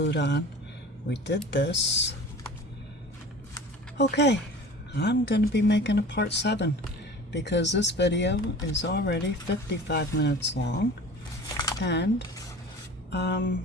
on. We did this. Okay. I'm going to be making a part 7 because this video is already 55 minutes long. And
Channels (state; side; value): normal; both; correlation 0.40